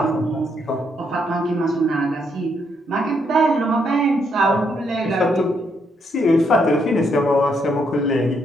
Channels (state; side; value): normal; both; correlation 0.75